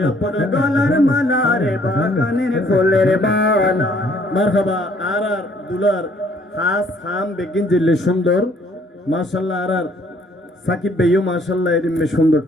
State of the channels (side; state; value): both; normal; correlation 0.63